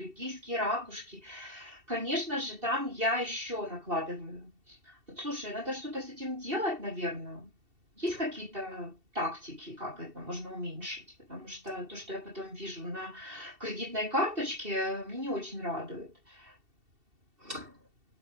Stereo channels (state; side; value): late; left; 2.7 ms